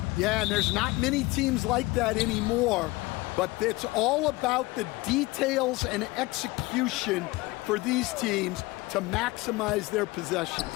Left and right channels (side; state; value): right; quieter; 21.5 dB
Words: Yeah, and there's not many teams like that anymore, but it's all about the details and execution for these teams to maximize their possessions.